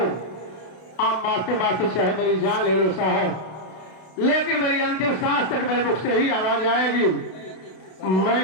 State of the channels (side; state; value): right; late; 32 ms